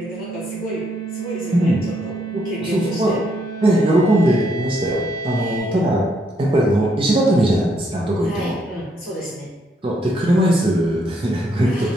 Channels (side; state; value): both; normal; correlation 0.74